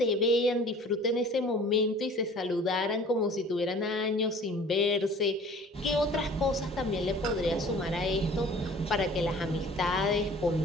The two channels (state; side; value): normal; both; correlation 0.48